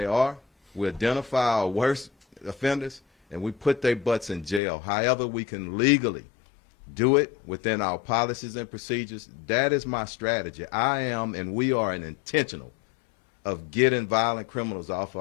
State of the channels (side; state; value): right; drops out; at 4.6 s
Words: are, we identify our worst offenders, and we put their butts in jail. However we can legally do it within our policies and procedures. That is my strategy. I am and we are intentional of getting violent criminals off